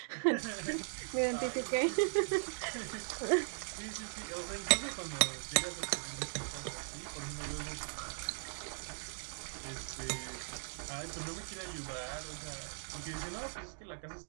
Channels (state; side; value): silent; left; digital silence